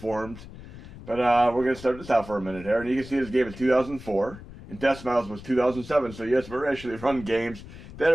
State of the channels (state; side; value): noise; left; rumble, 15 dB below the sound